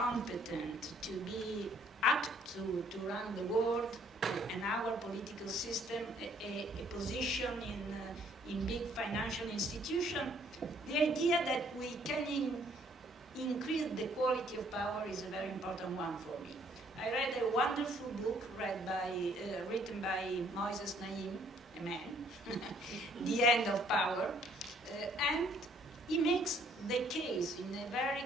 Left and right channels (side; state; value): both; normal; correlation 0.63